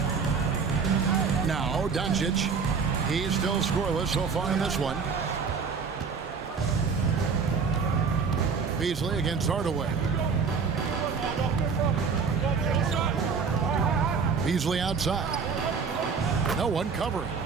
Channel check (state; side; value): quieter; left; 5.5 dB